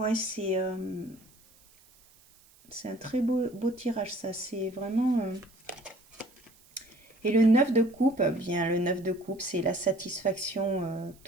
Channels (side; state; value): right; noise; hiss, 28 dB below the sound